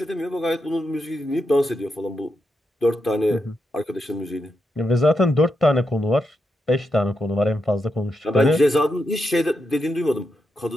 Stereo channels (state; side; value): normal; both; correlation 0.85